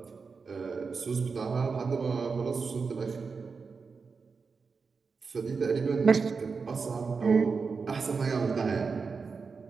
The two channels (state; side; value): quieter; left; 5.0 dB